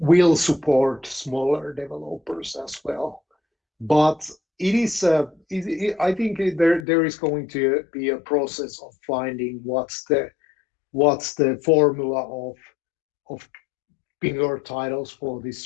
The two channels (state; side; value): drops out; right; at 6.9 s